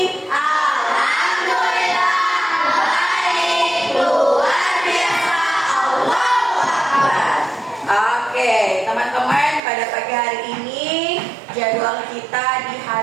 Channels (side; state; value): left; drops out; at 9.6 s